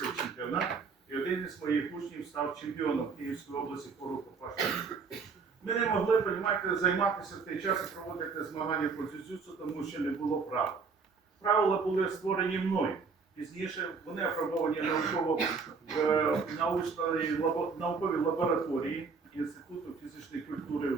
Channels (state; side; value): quieter; left; 5.0 dB